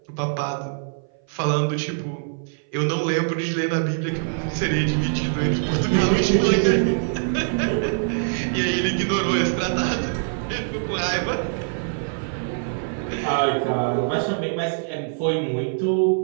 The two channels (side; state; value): left; silent; 58 dB below the other